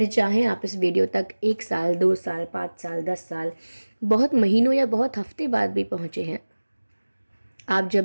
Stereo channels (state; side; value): inverted; both; correlation -1.00